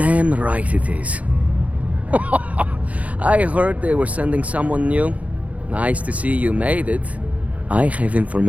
right it is. I heard they were sending someone new. Nice to see you made it. I have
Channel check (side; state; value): left; late; 0.068 ms